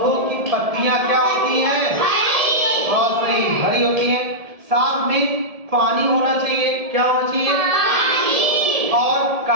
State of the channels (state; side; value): late; left; 1.7 ms